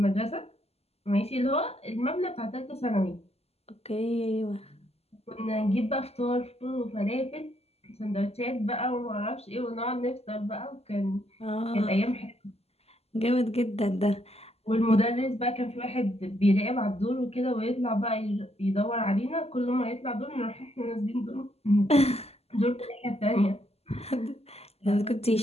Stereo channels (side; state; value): right; late; 0.29 ms